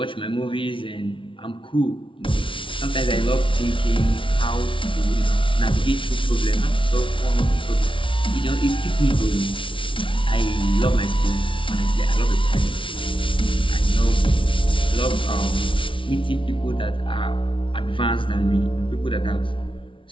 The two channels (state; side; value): late; right; 0.25 ms